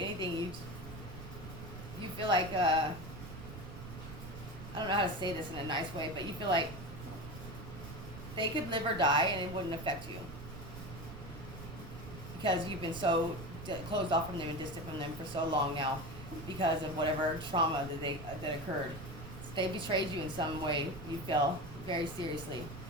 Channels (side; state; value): right; noise; rumble, 11 dB below the sound